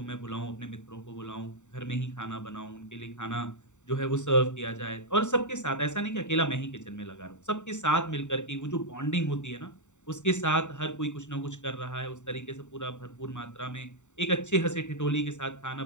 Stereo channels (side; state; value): right; late; 0.84 ms